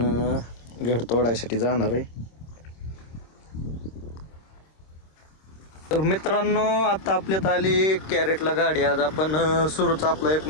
घड तोडायसाठी जाणार आहे. तर मित्रांनो, आता आपल्यात आली कॅरेटला गाडी. आज आपण सुरूचा आपला 1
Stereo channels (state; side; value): late; right; 26 ms